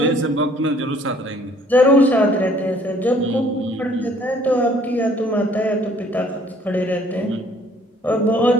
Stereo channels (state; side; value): normal; both; correlation 0.59